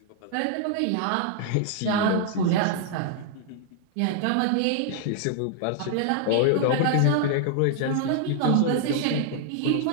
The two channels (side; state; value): both; different; correlation 0.00